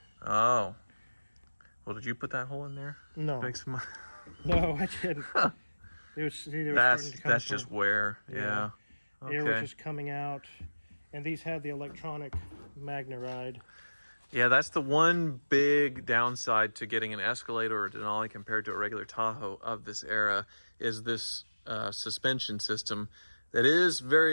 Oh. Well, did you put that hole in there? No. Make some... No, I didn't. That's just wear. Yeah. Air was just coming out. And these had the electronic Magneride. Yeah, that's the one big downside to getting an Escalade or a Denali compared to a regular Tahoe of this era is this suspension system that is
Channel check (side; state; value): both; inverted; correlation -1.00